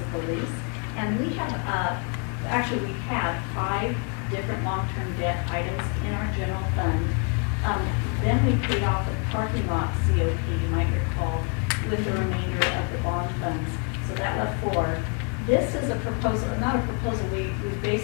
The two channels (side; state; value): right; quieter; 36.4 dB